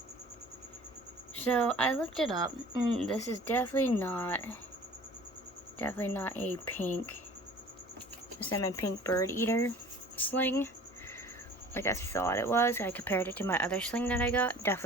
So, I looked it up, and this is definitely not a salmon pink bird eater sling like I thought it was. I compared it to my other sling that I got.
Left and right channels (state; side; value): normal; both; correlation 0.46